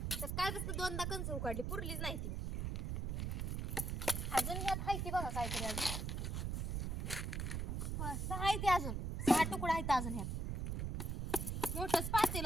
तर काय कसं दोनदा कणस उकडली पुरलीच नाही ती. अजून यात आहे ती बघा काहीतरी अजून 6 आहे ती अजून 6 तुकडा आहेत अजून ह्यात. मोठंच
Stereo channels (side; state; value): right; noise; rumble, 1 dB below the sound